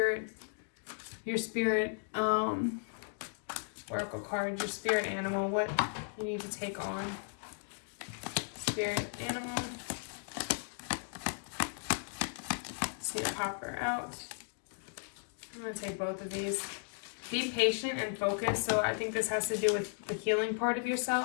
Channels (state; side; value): silent; right; digital silence